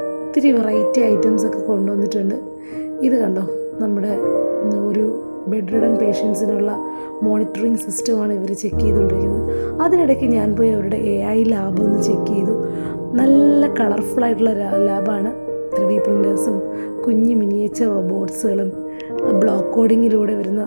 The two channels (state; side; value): inverted; both; correlation -1.00